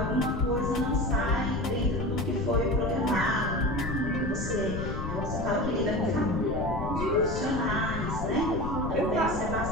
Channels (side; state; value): left; noise; rumble, 5 dB below the sound